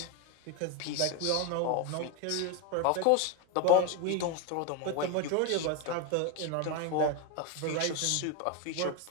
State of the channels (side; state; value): both; different; correlation 0.02